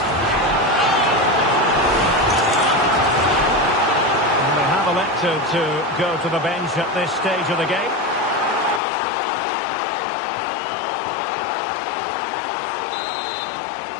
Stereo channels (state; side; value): drops out; right; at 8.8 s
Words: And they have elected to go to the bench at this stage of the game.